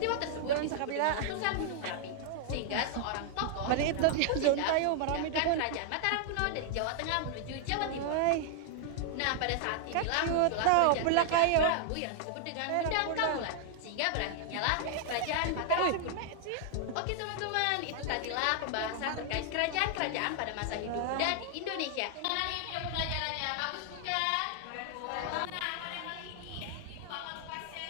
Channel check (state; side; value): different; both; correlation 0.00